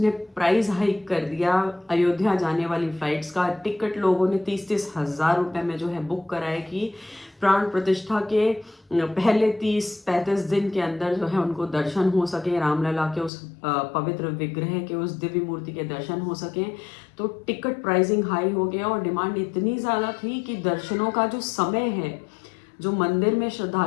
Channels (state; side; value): drops out; right; at 13.3 s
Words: प्राइस हाइक कर दिया अयोध्या जाने वाली फ्लाइट्स का। टिकट लोगों ने 30-30 हज़ार रुपए में जो है बुक कराए कि प्राण प्रतिष्ठा के पहले 30-35 दिन के अंदर जो है उनको दर्शन हो सके, रामलला के उस पवित्र विग्रह के, उस दिव्य मूर्ति के दर्शन हो सके। तो टिकट प्राइसिंग हाई हो गया और डिमांड इतनी ज़्यादा थी कि दर्शनों का जो समय है, जो मंदिर में